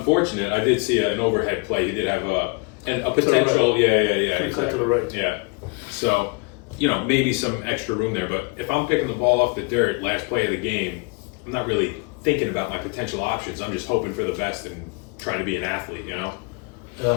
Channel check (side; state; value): right; quieter; 31.0 dB